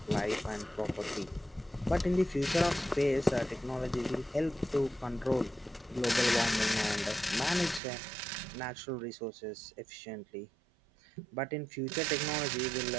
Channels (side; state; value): left; drops out; at 7.8 s